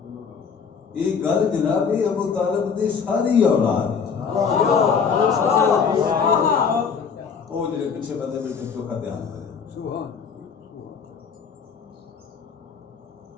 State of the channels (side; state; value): right; quieter; 6.1 dB